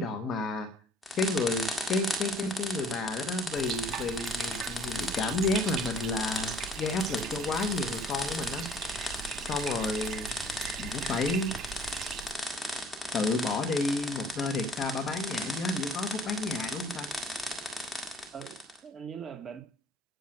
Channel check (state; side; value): normal; both; correlation 0.55